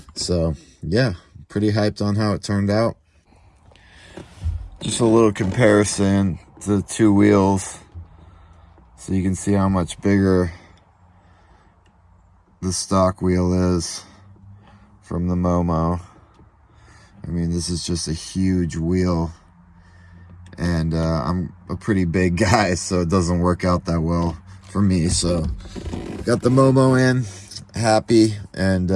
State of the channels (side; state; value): both; identical; correlation 1.00